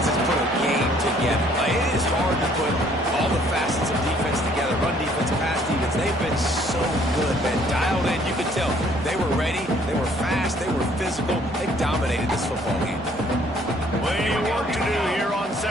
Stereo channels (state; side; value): normal; both; correlation 0.61